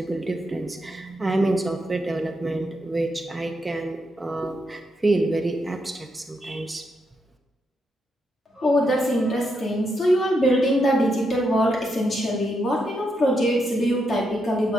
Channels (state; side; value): normal; both; correlation 0.81